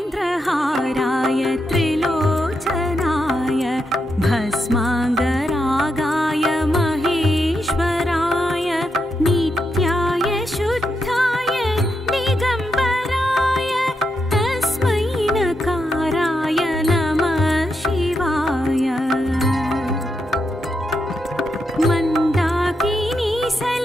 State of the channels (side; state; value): both; normal; correlation 0.83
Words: नागेन्द्रहाराय त्रिलोचनाय भस्माङ्गरागाय महेश्वराय नित्याय शुद्धाय दिगम्बराय तस्मै नकाराय नमः शिवाय। मन्दाकिनी